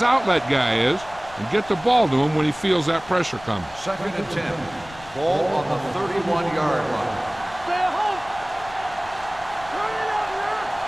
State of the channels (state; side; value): noise; left; rumble, 20 dB below the sound